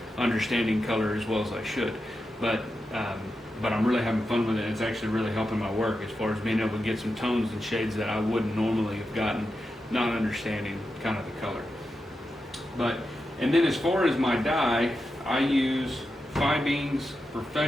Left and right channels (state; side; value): normal; both; correlation 0.89